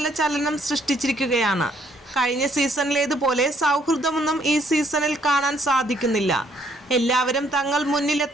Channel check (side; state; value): both; normal; correlation 0.67